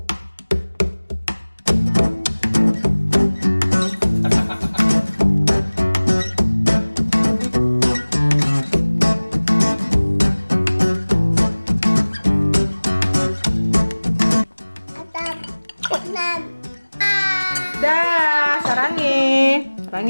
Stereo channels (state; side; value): inverted; both; correlation -1.00